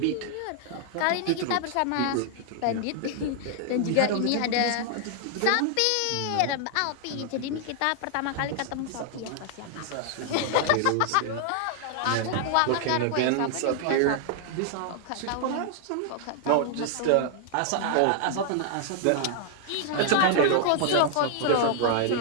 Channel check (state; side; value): different; both; correlation 0.00